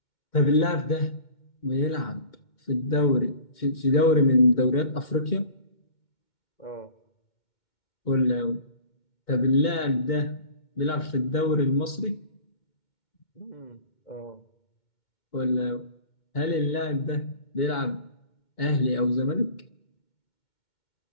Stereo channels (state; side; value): late; right; 2.2 ms